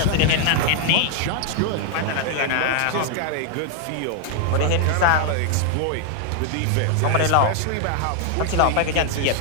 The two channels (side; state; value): both; different; correlation 0.00